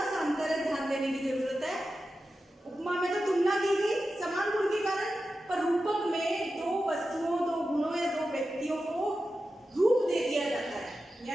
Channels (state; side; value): normal; both; correlation 0.92